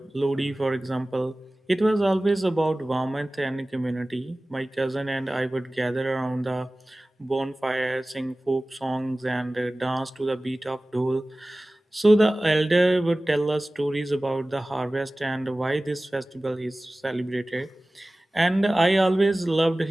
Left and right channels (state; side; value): normal; both; correlation 0.97